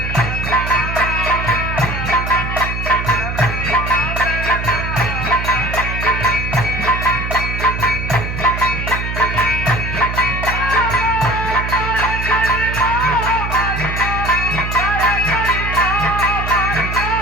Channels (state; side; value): noise; right; hum, 4 dB below the sound